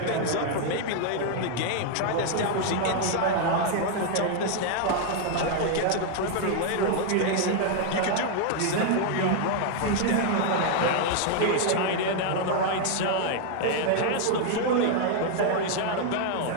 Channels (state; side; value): different; both; correlation 0.00